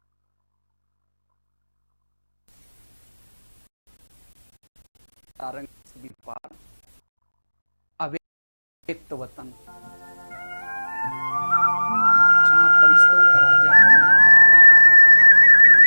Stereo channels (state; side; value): inverted; both; correlation -1.00